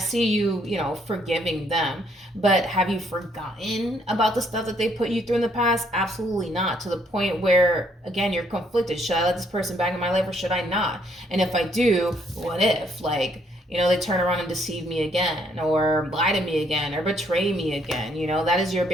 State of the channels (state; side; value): normal; both; correlation 0.69